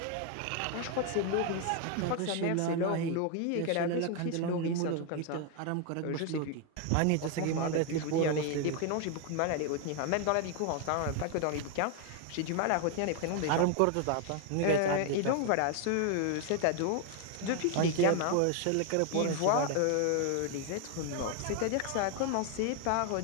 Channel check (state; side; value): different; both; correlation 0.01